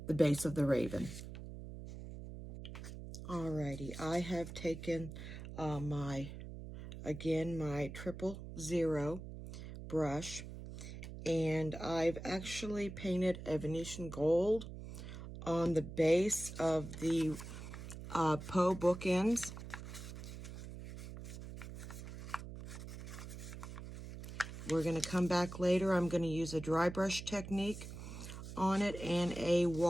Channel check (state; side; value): noise; right; hum, 10 dB below the sound